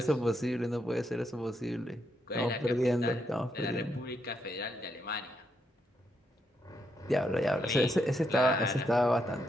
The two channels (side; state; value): both; normal; correlation 0.79